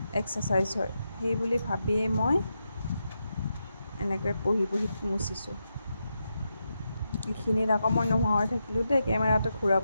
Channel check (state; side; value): inverted; both; correlation -0.86